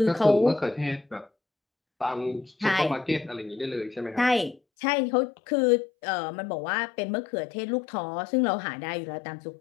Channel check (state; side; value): drops out; right; at 4.6 s